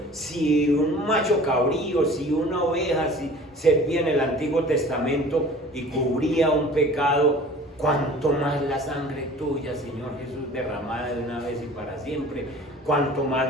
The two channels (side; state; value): both; normal; correlation 0.45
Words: Si un macho cabrío, si una oveja, si servía en el Antiguo Testamento y cubría un pecado, cuánto más la sangre tuya, Señor Jesús, derramada de una vez y para siempre, cuánto más